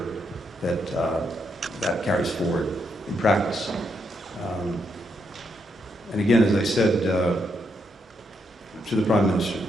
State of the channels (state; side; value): normal; both; correlation 0.79